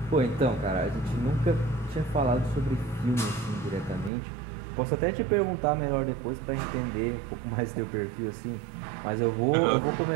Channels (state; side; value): drops out; left; at 4.1 s